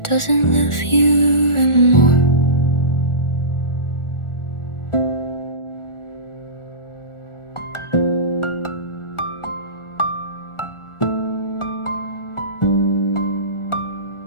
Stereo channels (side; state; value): right; late; 1.4 ms